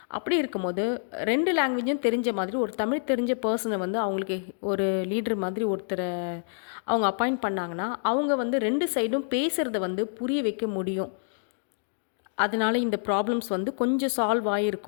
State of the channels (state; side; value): silent; right; digital silence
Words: அப்படி இருக்கும்போது 2 லாங்குவேஜும் தெரிஞ்ச மாதிரி ஒரு தமிழ் தெரிஞ்ச பர்சனை வந்து அவங்களுக்கு ஒரு லீடர் மாதிரி ஒருத்தரை அவங்க அப்பாயிண்ட் பண்ணாங்கன்னா, அவங்க வந்து 2 சைடும் பேசுகிறத வந்து புரிய வைக்க முடியும். அதனால இந்த ப்ராப்ளம்ஸ் வந்து கொஞ்சம் சால்வ்